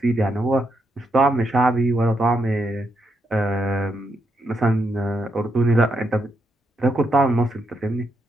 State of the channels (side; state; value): both; normal; correlation 0.80